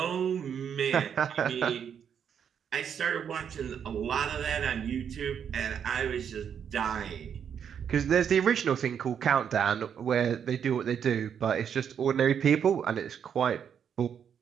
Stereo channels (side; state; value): left; quieter; 8.0 dB